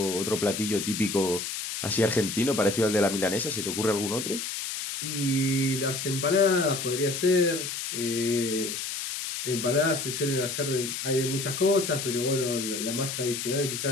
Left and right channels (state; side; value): noise; left; hiss, 5 dB below the sound